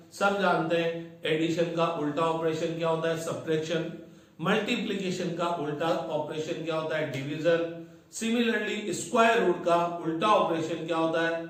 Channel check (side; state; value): both; identical; correlation 1.00